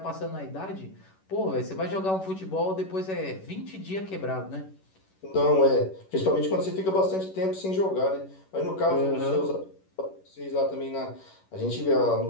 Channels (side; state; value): right; late; 11 ms